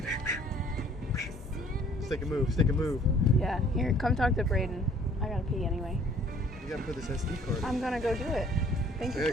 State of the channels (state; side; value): normal; both; correlation 0.57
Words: Stick a move, stick a move. Yeah, here, come talk to Braden. I gotta pee anyway. You gotta put this SD card in. I'm gonna go do it. Thank you for